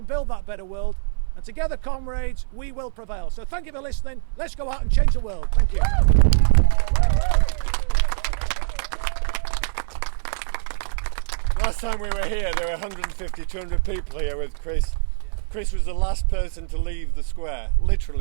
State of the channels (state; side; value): silent; left; 59 dB below the other